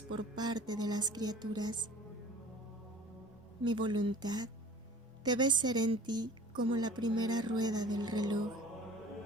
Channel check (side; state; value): both; normal; correlation 0.45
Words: por parte de las criaturas. Mi voluntad debe ser en ti como la primera rueda del reloj.